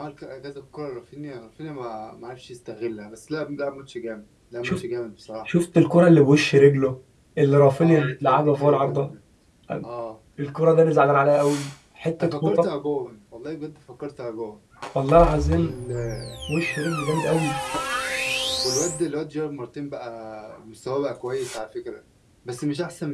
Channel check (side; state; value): both; identical; correlation 1.00